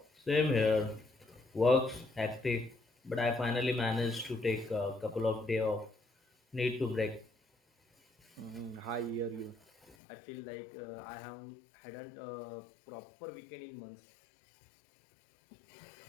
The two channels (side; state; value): right; drops out; at 10.0 s